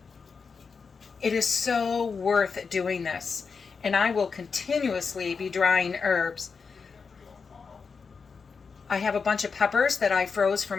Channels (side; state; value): right; quieter; 5.3 dB